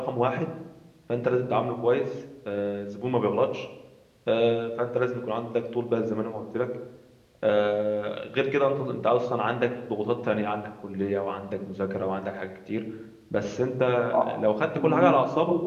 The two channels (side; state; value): both; identical; correlation 1.00